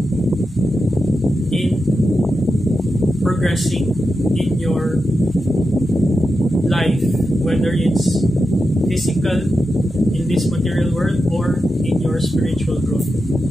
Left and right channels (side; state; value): both; normal; correlation 0.89